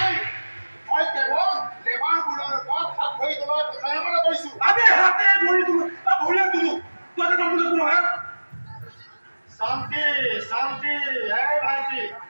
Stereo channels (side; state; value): both; inverted; correlation -1.00